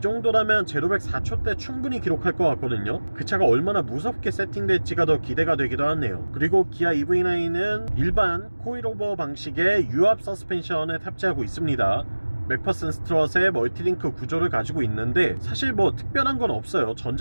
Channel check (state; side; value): inverted; both; correlation -1.00